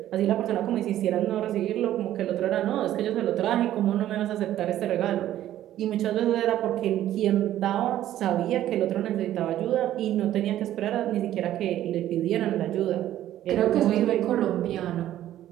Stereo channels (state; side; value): quieter; left; 12.7 dB